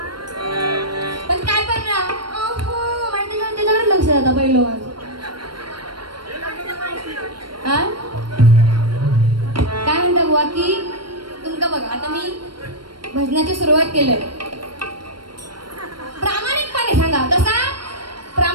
पण काय करणार? त्याच्याकडे लक्ष जाता पहिलं माझं. काय म्हणता बुवा की तुमका बघा आता मी भजनाची सुरुवात केलंय. प्रामाणिकपणे सांगा तसा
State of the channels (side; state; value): left; late; 0.72 ms